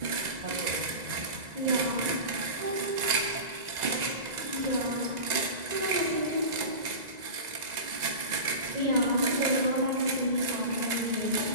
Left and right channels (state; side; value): late; left; 2.0 ms